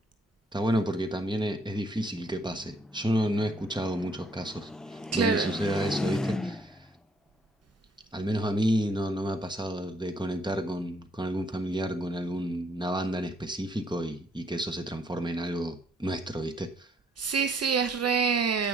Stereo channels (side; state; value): both; normal; correlation 0.67